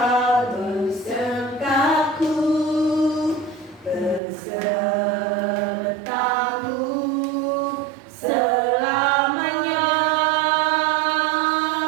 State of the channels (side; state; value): left; drops out; at 4.2 s